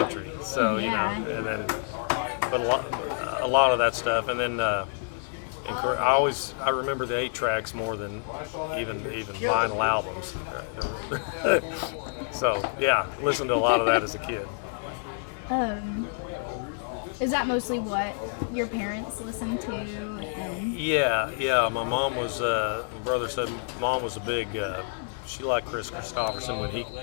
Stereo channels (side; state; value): right; silent; digital silence